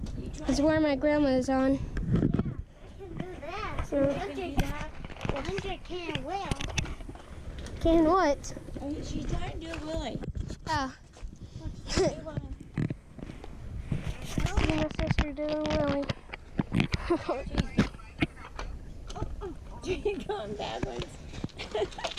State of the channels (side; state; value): both; identical; correlation 1.00